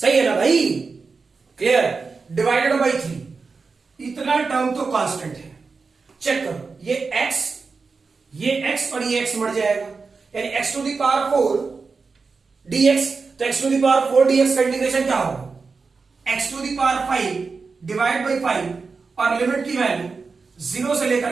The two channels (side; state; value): left; quieter; 4.6 dB